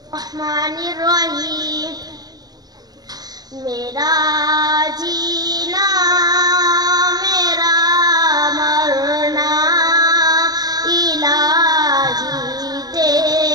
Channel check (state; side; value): late; left; 0.19 ms